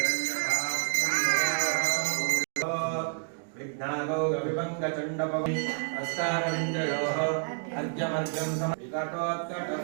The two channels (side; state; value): left; silent; digital silence